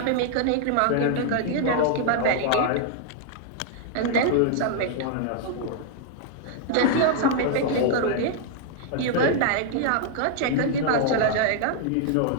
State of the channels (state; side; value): different; both; correlation 0.00